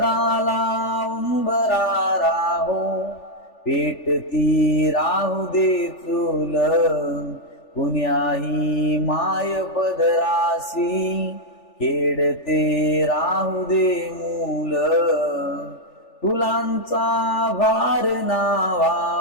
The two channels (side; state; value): right; late; 3.4 ms